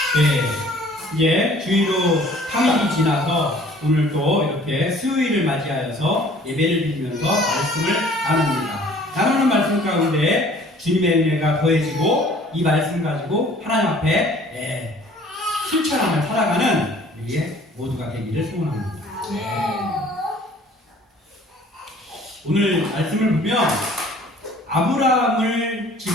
네, 이제 주일로 3일이 지나서 오늘 또 이렇게 수요일을 맞이하여서 예배를 드리면서 말씀을 나눕니다. 나누는 말씀 가운데 주님의 은혜가 더해지고 이 말씀 가지고 하나님 앞에 실천하며 살아가는 우리 모두가 되기를 소원합니다. 오늘 말씀을 보면 아브라함을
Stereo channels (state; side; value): normal; both; correlation 0.53